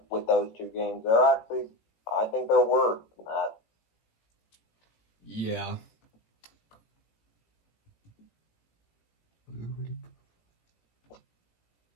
with those two games. I think they're worse than that. Yeah.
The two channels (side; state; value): right; late; 18 ms